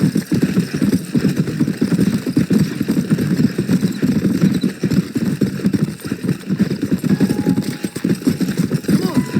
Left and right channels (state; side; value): identical; both; correlation 1.00